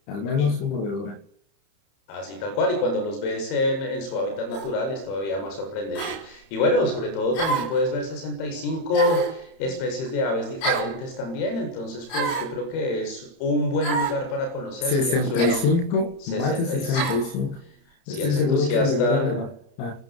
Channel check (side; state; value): right; late; 30 ms